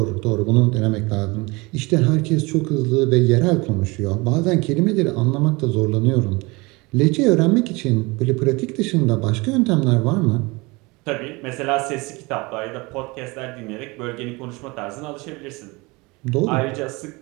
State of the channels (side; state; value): left; quieter; 24.9 dB